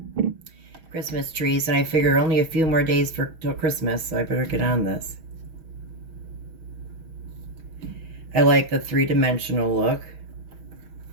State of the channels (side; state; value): left; late; 6.3 ms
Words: Christmas trees, and I figure only a few more days till Christmas, so I better get on this. I like the three-dimensional look.